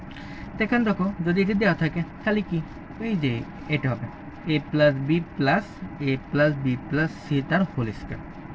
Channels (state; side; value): identical; both; correlation 1.00